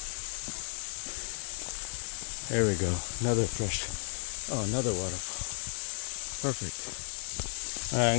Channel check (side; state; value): right; silent; 56 dB below the other